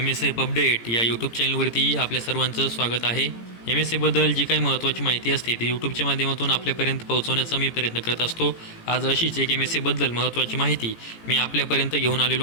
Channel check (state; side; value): late; right; 18 ms